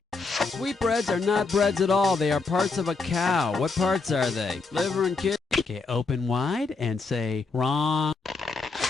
Sweetbreads are not breads at all. They are parts of a cow. What parts are they? Liver and kidney. Okay, open wide and say wrong.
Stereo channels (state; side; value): quieter; right; 4.1 dB